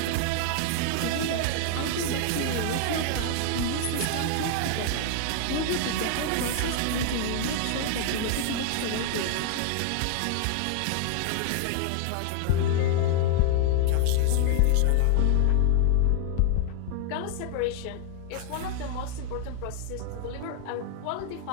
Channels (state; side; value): different; both; correlation 0.00